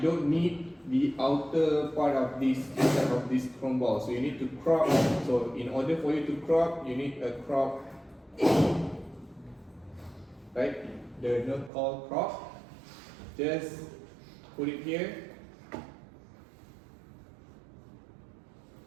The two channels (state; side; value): drops out; left; at 11.7 s